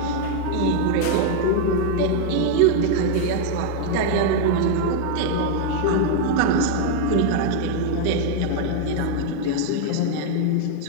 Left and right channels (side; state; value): both; different; correlation 0.00